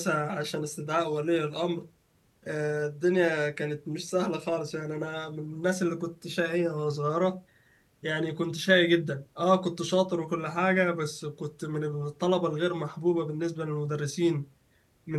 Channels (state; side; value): identical; both; correlation 1.00